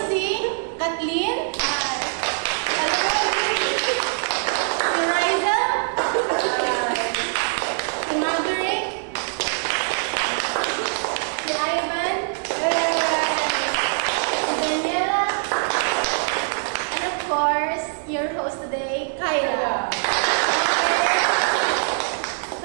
si Kathleen, si Riza, si Marjorie, si Ivan, si Daniela, and of course, your host today, Kyla.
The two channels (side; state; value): left; silent; digital silence